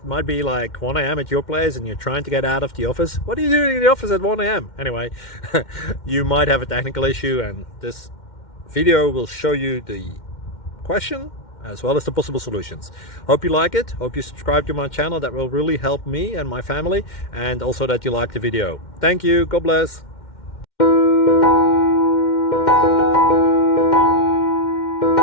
might be like 1 a.m. at your place and you're trying to get out of the office. What are you doing in the office at 1 a.m.? Anyway, you might have a technical issue and this video will show you the question as well as the possible solutions. Hope you like it, hope you subscribe to my channel. That will really help me and my family, and also that you like the video. Thank you, God bless.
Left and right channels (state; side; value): late; right; 2.1 ms